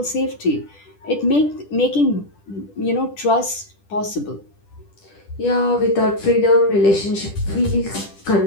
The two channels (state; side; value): late; right; 10 ms